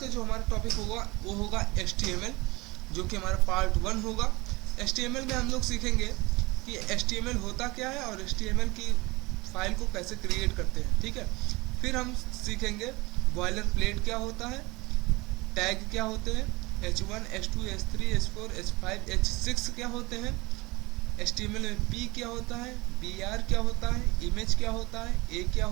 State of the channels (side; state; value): left; quieter; 22.9 dB